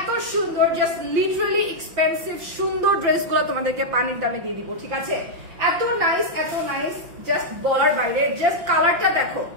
সুন্দর, জাস্ট লিটারালি এক্সপেন্সিভ সুন্দর ড্রেসগুলো তোমাদেরকে পানির দামে দিয়ে দিব, ঠিক আছে? এত নাইস, জাস্ট বলার বাইরে। জাস্ট কালারটা দেখো,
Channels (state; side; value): late; left; 5.9 ms